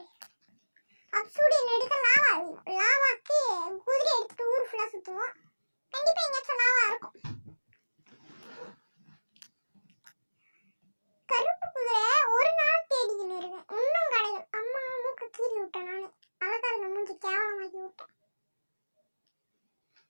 அப்சூடியன் எடுக்க லாவாக்கு குதிரை எடுத்துட்டு ஊர் ஃபுல்லா சுத்துவோம். கண்டிப்பா எங்கேயாச்சும் லாவா இருக்கும். கருப்பு குதிரை ஒரு நாள் தேடிக்கின்னு இருக்கேன், இன்னும் கிடையாது. அம்மா மூக்க கீறி விட்டேன் நானு. அழகாருங்க மூஞ்சி கேவலமாக்கி விட்டேன்.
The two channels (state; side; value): inverted; both; correlation -1.00